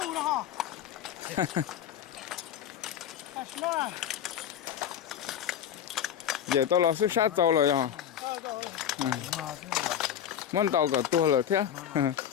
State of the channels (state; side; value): quieter; right; 9.6 dB